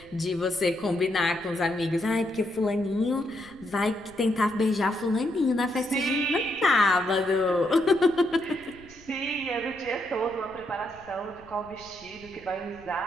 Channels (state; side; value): noise; left; rumble, 25 dB below the sound